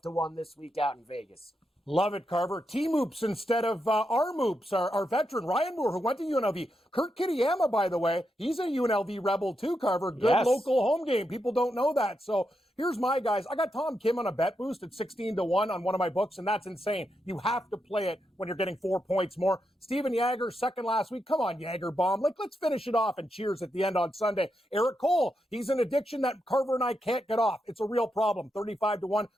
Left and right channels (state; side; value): normal; both; correlation 0.84